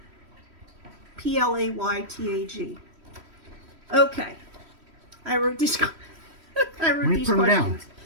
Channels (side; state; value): left; late; 3.1 ms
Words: PLAYTAG. Okay. I wrote these questions.